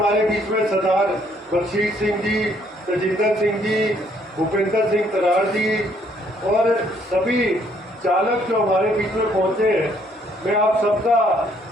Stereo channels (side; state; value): both; normal; correlation 0.66